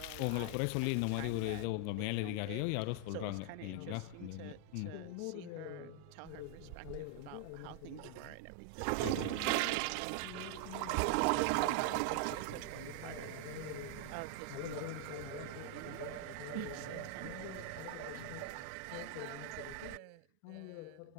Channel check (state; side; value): different; both; correlation 0.00